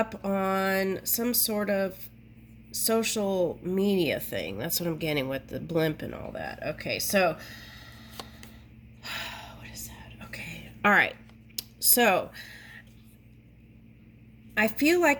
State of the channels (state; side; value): identical; both; correlation 1.00